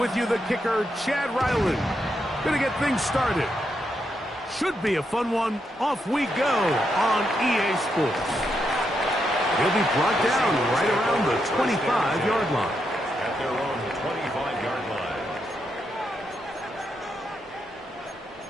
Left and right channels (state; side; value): normal; both; correlation 0.82